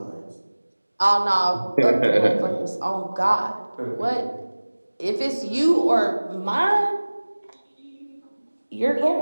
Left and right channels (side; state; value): both; inverted; correlation -1.00